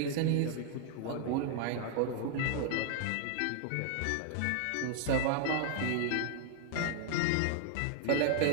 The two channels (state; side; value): different; both; correlation 0.00